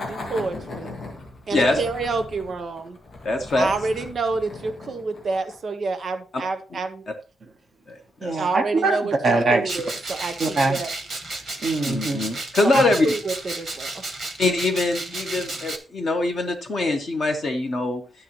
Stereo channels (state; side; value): normal; both; correlation 0.80